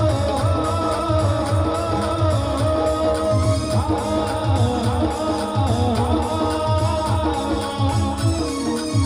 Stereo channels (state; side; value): noise; right; hum, 23 dB below the sound